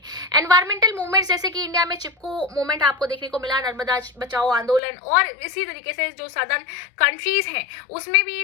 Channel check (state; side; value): drops out; right; at 4.8 s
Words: एनवायरमेंटल मूवमेंट्स, जैसे कि इंडिया में चिपको मूवमेंट आपको देखने को मिला, नर्मदा बचाओ आंदोलन, और इसी तरीके से जो सदर्न कंट्रीज हैं उसमें भी